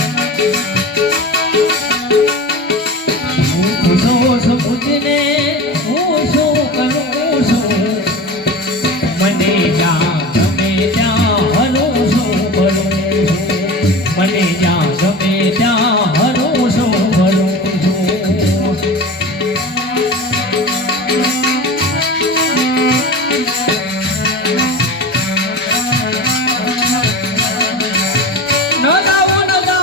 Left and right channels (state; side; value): normal; both; correlation 0.31